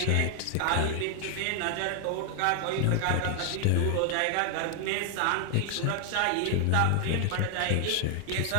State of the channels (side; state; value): both; different; correlation 0.00